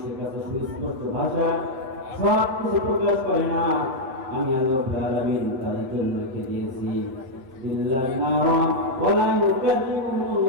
কাছে সুস্পষ্ট ভাষা সব কিছু প্রকাশ করে না, আমি আল্লাহ রাব্বুল আলামিন তাদের জন্য রেখে দিয়েছি ইল্লান নারা ওয়া লা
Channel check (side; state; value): left; late; 8.0 ms